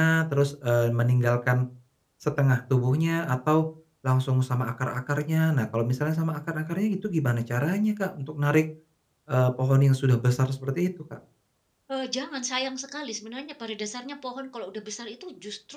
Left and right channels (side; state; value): both; identical; correlation 1.00